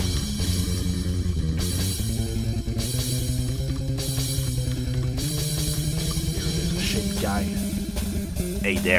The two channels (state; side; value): identical; both; correlation 1.00